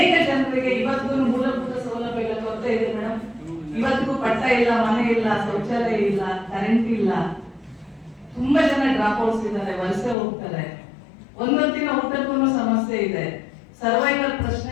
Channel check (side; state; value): right; drops out; at 10.2 s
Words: ಜನರಿಗೆ ಇವತ್ತಿಗೂ ಮೂಲಭೂತ ಸೌಲಭ್ಯಗಳ ಕೊರತೆ ಇದೆ ಮೇಡಮ್. ಇವತ್ತಿಗೂ ಪಟ್ಟ ಇಲ್ಲ, ಮನೆ ಇಲ್ಲ, ಶೌಚಾಲಯ ಇಲ್ಲ, ಕರೆಂಟ್ ಇಲ್ಲ. ತುಂಬಾ ಜನ ಡ್ರಾಪ್ ಔಟ್ಸ್ ಇದ್ದಾರೆ, ವಲಸೆ ಹೋಗ್ತಾರೆ. ಒಂದೊಂದಿನ ಊಟಕ್ಕೂ ಸಮಸ್ಯೆ ಇದೆ. ಸರ್ವೈವಲ್